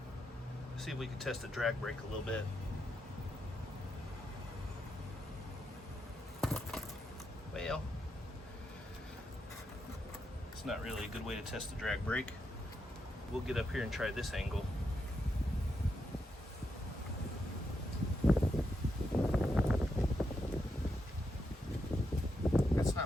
Let's see if we can test the drag brake a little bit. Well, it's not really a good way to test the drag brake. We'll get up here and try this angle. That's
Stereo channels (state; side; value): normal; both; correlation 0.83